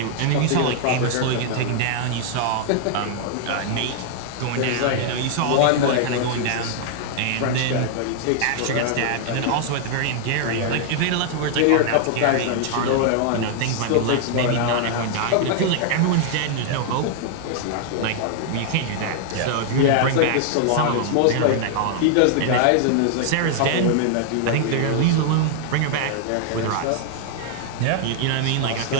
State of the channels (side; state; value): both; different; correlation 0.00